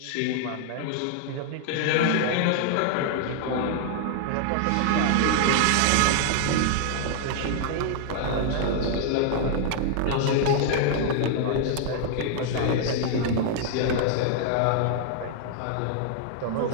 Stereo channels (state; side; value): different; both; correlation 0.00